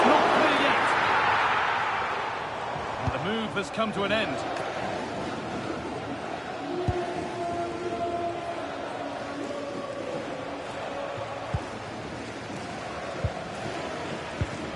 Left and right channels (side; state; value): both; identical; correlation 1.00